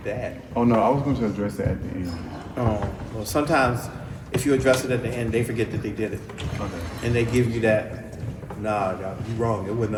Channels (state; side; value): identical; both; correlation 1.00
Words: bad. Oh no, I was going to address that at the end. Oh, well, sometimes if you address it at the end, they forget that they did it. Okay. And they give you that, nah, you wrong, it wasn't